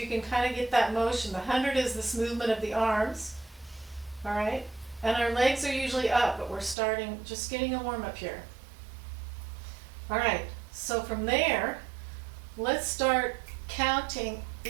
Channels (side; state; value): left; drops out; at 6.8 s